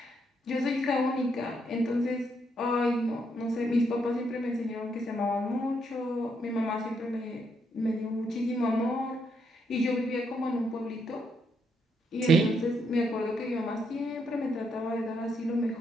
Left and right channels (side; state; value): both; normal; correlation 0.76